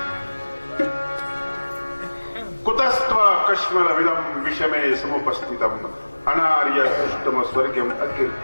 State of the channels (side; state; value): both; inverted; correlation -1.00